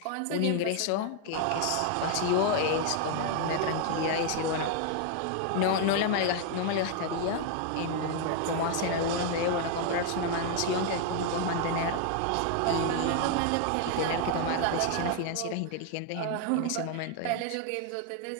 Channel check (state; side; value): different; both; correlation 0.00